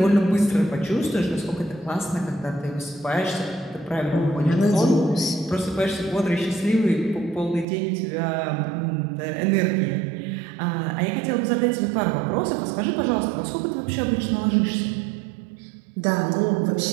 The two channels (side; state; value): left; drops out; at 7.7 s